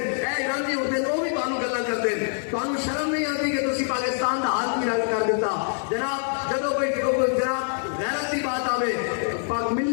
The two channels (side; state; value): right; silent; digital silence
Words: اے ایرانی اٹھتے ہیں وہ بھی تمہیں گلا کرتے ہیں تمہیں شرم نہیں آتی کہ تسی پاکستان کا حال کی رنگ کر دیتا جناب جب کوئی جناب غیرت کی بات آوے